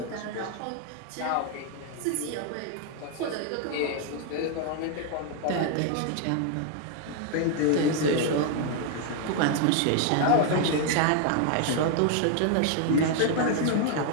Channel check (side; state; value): both; different; correlation 0.00